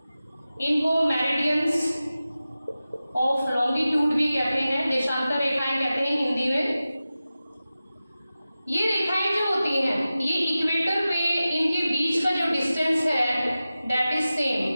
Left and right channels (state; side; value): inverted; both; correlation -0.95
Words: इनको मेरिडियंस ऑफ लॉन्गिट्यूड भी कहते हैं, देशांतर रेखाएं कहते हैं हिंदी में। ये रेखाएं जो होती हैं ये इक्वेटर पे इनके बीच का जो डिस्टेंस है दैट इज सेम,